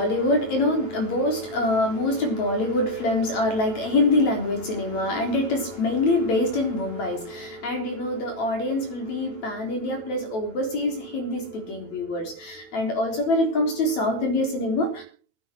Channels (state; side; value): late; right; 9.2 ms